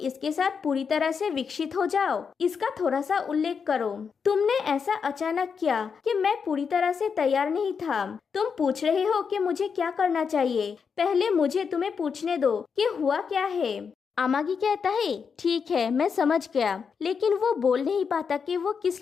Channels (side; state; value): right; quieter; 6.1 dB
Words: साथ पूरी तरह से विकसित हो जाओ इसका थोड़ा सा उल्लेख करो। तुमने ऐसा अचानक किया कि मैं पूरी तरह से तैयार नहीं था। तुम पूछ रहे हो कि मुझे क्या करना चाहिए, पहले मुझे तुम्हें पूछने दो कि हुआ क्या है। अमागी कहता है, ठीक है मैं समझ गया, लेकिन वो बोल नहीं पाता कि वो